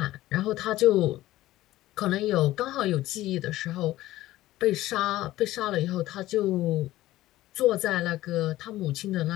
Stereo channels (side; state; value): right; quieter; 15.9 dB